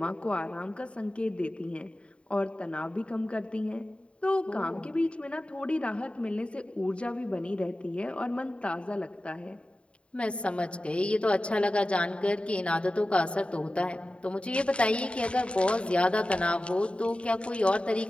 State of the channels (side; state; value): right; late; 0.058 ms